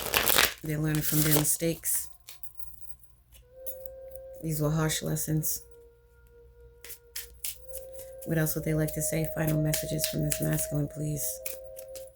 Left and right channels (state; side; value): identical; both; correlation 1.00